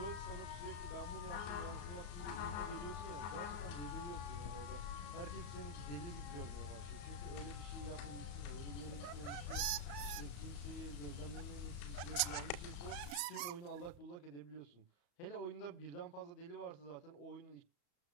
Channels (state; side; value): late; right; 34 ms